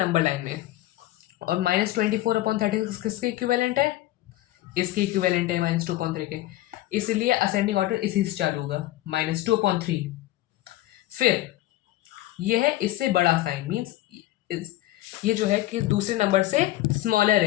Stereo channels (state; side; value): quieter; right; 15.8 dB